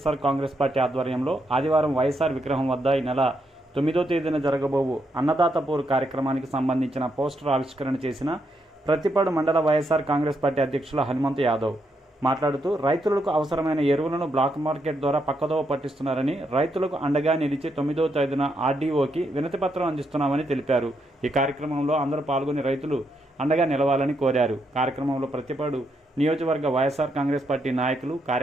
కాంగ్రెస్ పార్టీ ఆధ్వర్యంలో ఆదివారం వైఎస్ఆర్ విగ్రహం వద్ద ఈ నెల 9వ తేదీన జరగబోవు అన్నదాత పోరు కార్యక్రమానికి సంబంధించిన పోస్టర్ ఆవిష్కరణ చేసిన ప్రత్తిపాడు మండల వైఎస్ఆర్ కాంగ్రెస్ పార్టీ అధ్యక్షులు హనుమంత్ యాదవ్ మాట్లాడుతూ రైతులకు అవసరమైన ఎరువులను బ్లాక్ మార్కెట్ ద్వారా పక్కదోవ పట్టిస్తున్నారని, రైతులకు అండగా నిలిచి 9వ తేదీన ఆర్డీఓకి వినతిపత్రం అందిస్తున్నామని తెలిపారు. ఈ కార్యక్రమంలో అందరూ పాల్గొని రైతులు అండగా నిలవాలని కోరారు. కార్యక్రమంలో ప్రత్తిపాడు నియోజకవర్గ వైఎస్ఆర్ కాంగ్రెస్ పార్టీ నాయకులు,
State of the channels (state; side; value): normal; both; correlation 0.79